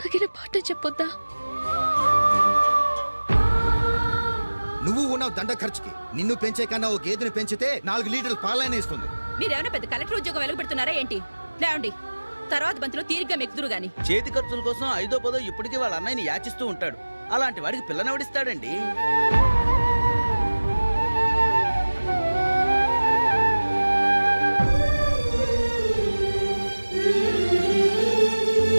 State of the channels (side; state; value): both; inverted; correlation -1.00